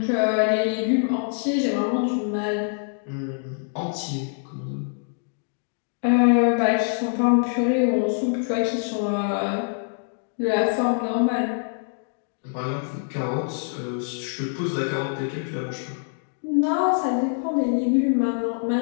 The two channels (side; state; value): right; silent; 62 dB below the other